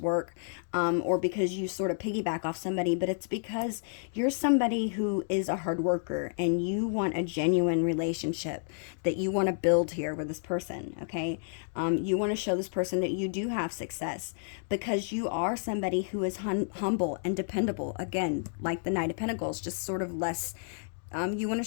work, or because you sort of piggyback off somebody, but it's because you're somebody who is a hard worker and you want a genuine relationship that you want to build here with this person, okay? You want to show this person that you do have success because you are somebody who is humble and dependable. Again, like the Knight of Pentacles, just sort of less. You want to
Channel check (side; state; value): right; silent; digital silence